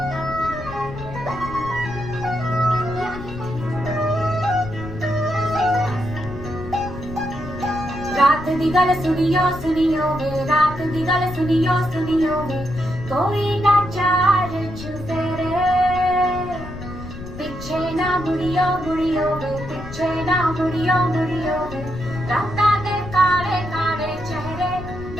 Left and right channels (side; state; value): left; noise; rumble, 11 dB below the sound